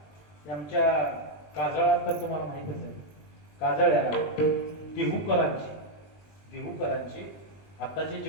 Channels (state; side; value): late; right; 20 ms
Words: आमच्या काजळात तर तुम्हाला माहितच आहे, काजळ्याला देहूकरांची आताचे